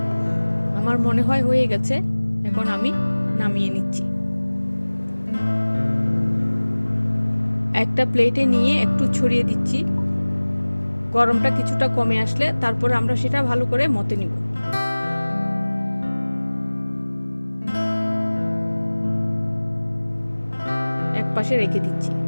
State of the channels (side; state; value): both; inverted; correlation -1.00